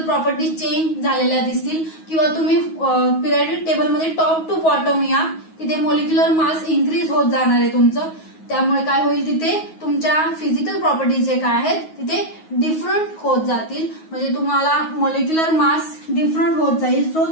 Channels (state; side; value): late; right; 9.4 ms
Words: प्रॉपर्टी चेंज झालेल्या दिसतील. किंवा तुम्ही पिरियॉडिक टेबल मध्ये टॉप टू बॉटम या, तिथे मॉलिक्युलर मास इन्क्रीज होत जाणार आहे तुमचं. त्यामुळे काय होईल, तिथे तुमच्या फिजिकल प्रॉपर्टीज जे काय आहेत तिथे डिफरंट होत जातील. म्हणजे तुम्हाला मॉलिक्युलर मास डिफरंट होत जाईल. सो